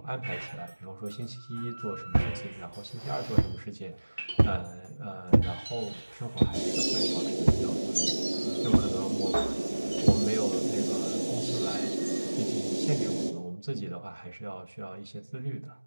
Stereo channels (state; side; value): inverted; both; correlation -1.00